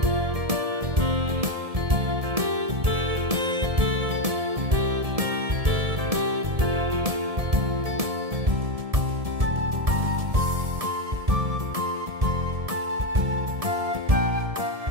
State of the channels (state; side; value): late; left; 1.7 ms